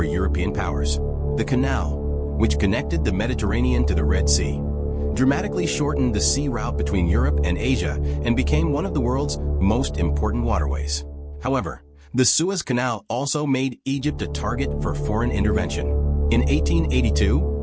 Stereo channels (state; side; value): identical; both; correlation 1.00